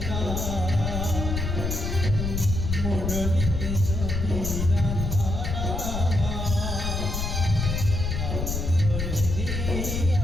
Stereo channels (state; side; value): noise; left; rumble, 2 dB below the sound